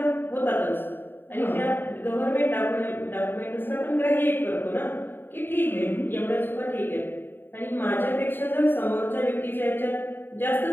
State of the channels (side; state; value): right; late; 0.096 ms